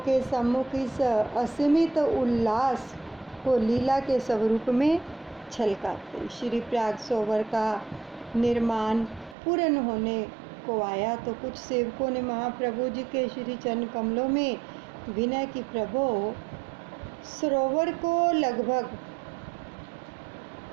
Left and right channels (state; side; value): drops out; left; at 9.3 s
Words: सम्मुख इस असीमित उल्लास को लीला के स्वरूप में छलकाते। श्री प्रयाग सरोवर का निर्माण पूर्ण होने को आया तो कुछ सेवकों ने महाप्रभु जी के श्री चरण कमलों में विनय की, प्रभु सरोवर को लगभग